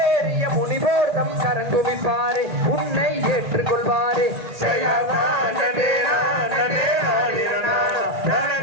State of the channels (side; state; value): left; late; 1.8 ms